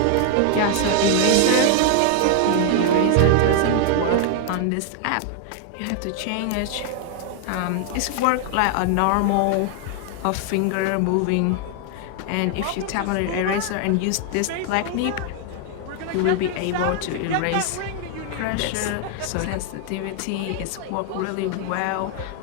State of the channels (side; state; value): both; different; correlation 0.00